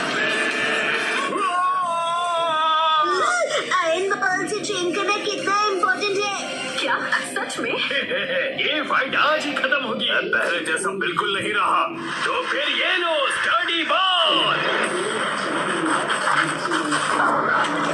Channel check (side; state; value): both; identical; correlation 1.00